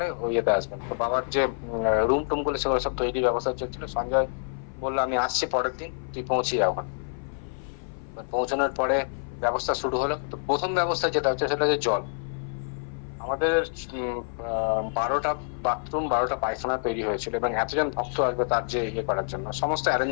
ওই ইয়েতে আসবেন। তো বাবার যে রুম টুম গুলো সেগুলো সব তৈরি ব্যবস্থা চলছিল। সঞ্জয় বললো আমি আসছি পরের দিন, তুই পৌঁছে যা ওখানে। এবার পৌঁছানোর পরে ব্যবস্থা শুরু হলো। তো প্রথম ব্যবস্থা যেটা হচ্ছে সেটা হচ্ছে জল। আমাদের 12টা বাথরুম, 12টা পায়খানা তৈরি হয়েছিল, এবং এতজন ভক্ত আসবে তার যে ইয়ে করার জন্য সমস্ত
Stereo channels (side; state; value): right; silent; 56 dB below the other